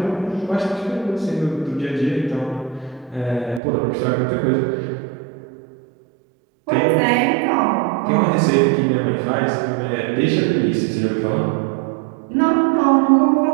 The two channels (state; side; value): drops out; left; at 3.6 s